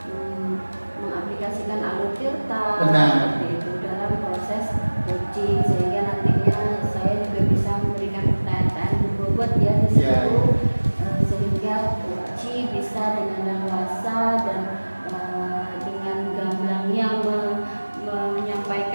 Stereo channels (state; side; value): inverted; both; correlation -1.00